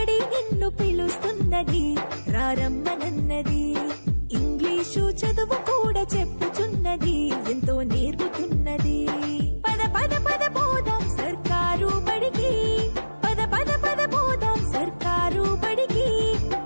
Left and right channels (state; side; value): inverted; both; correlation -1.00